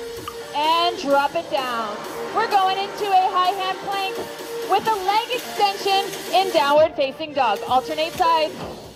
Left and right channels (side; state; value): both; identical; correlation 1.00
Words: and drop it down. We're going into a high hand plank with a leg extension in downward facing dog. Alternate sides.